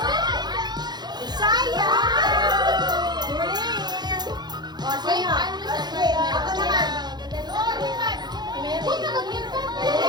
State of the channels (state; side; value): late; left; 0.21 ms